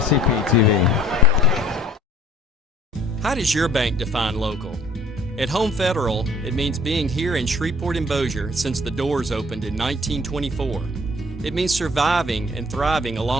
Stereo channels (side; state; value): both; normal; correlation 0.53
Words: TV. How does your bank define local? At Home Federal, it means being here in Shreveport and Bossier since the doors opened in 1924. It means surviving and thriving